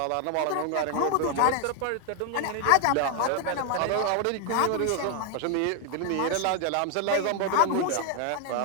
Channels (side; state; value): both; different; correlation 0.00